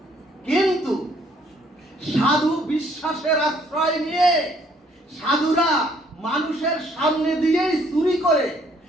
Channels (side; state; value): both; normal; correlation 0.64